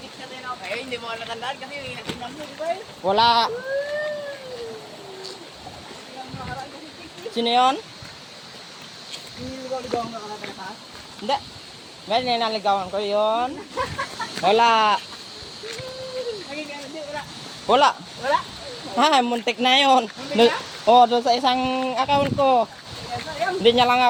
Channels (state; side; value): identical; both; correlation 1.00